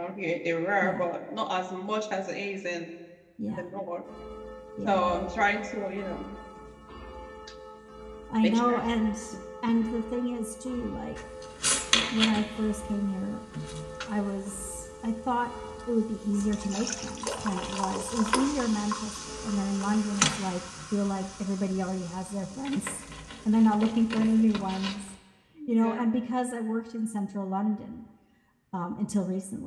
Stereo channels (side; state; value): both; identical; correlation 1.00